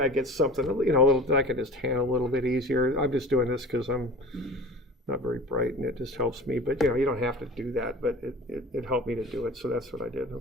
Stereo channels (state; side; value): normal; both; correlation 0.38